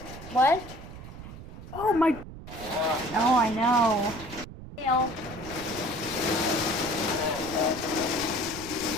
What? Oh my. Oh, I know. Hail.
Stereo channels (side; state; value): right; noise; rumble, 14 dB below the sound